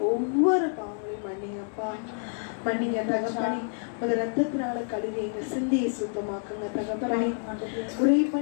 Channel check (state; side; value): silent; right; 59 dB below the other